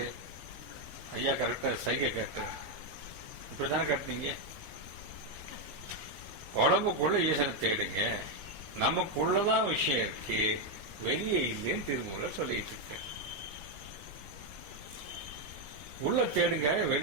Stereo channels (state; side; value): late; left; 20 ms